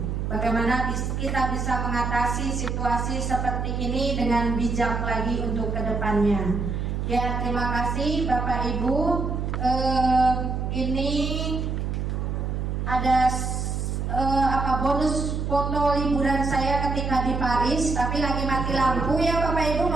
Bagaimana kita bisa mengatasi situasi seperti ini dengan bijak lagi untuk kedepannya. Ya, terima kasih Bapak Ibu. Ini ada bonus foto liburan saya ketika di Paris, tapi lagi mati lampu ya Bapak Ibu.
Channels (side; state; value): right; noise; hum, 2 dB below the sound